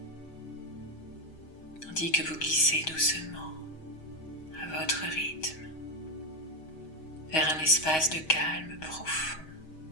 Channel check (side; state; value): right; late; 6.3 ms